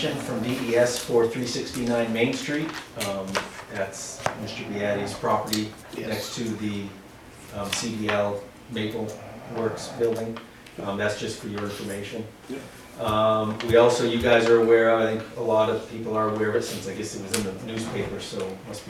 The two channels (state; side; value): identical; both; correlation 1.00